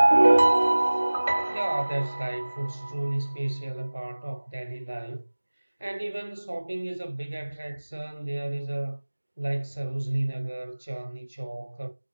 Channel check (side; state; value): both; inverted; correlation -1.00